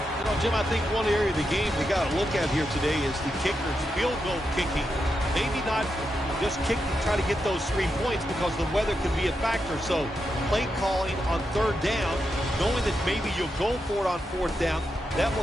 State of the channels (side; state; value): both; normal; correlation 0.85